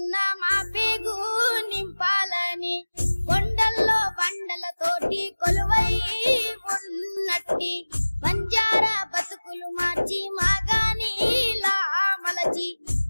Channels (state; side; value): inverted; both; correlation -1.00